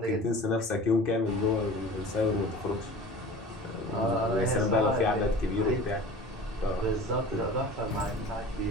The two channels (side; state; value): both; normal; correlation 0.39